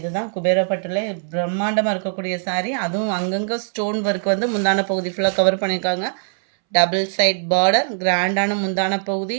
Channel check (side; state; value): left; silent; 65 dB below the other